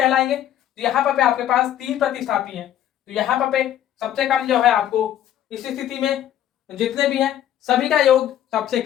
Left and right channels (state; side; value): quieter; right; 11.4 dB